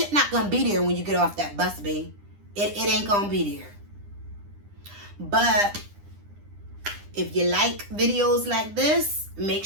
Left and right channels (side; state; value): left; late; 9.9 ms